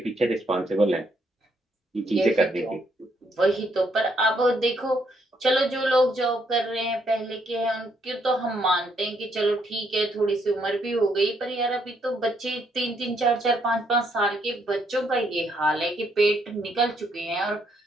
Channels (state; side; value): normal; both; correlation 0.73